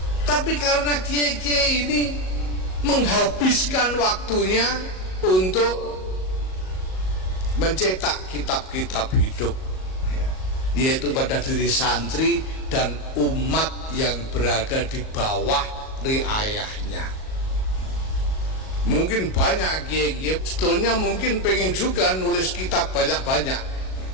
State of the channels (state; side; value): late; right; 38 ms